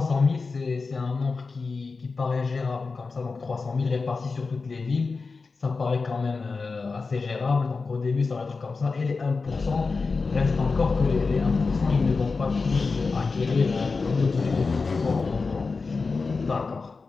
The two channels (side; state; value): right; quieter; 4.3 dB